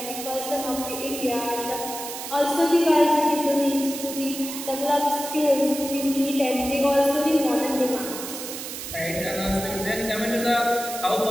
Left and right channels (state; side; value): noise; right; hiss, 8 dB below the sound